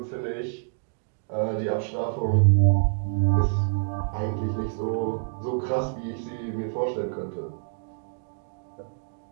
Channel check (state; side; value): silent; left; digital silence